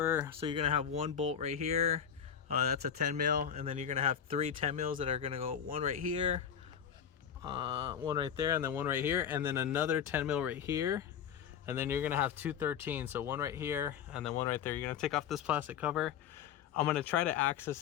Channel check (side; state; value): right; quieter; 8.3 dB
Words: So you're gonna have one bolt right here, that's a 10 mil, and then you're gonna have 3 10 mils that are gonna go one right here, one right there, and then one right here, and then another 10 mil right here. And then you're gonna have 2 13s, so one right here and then one right there. You're gonna take off this plastic cover. I'm gonna try to access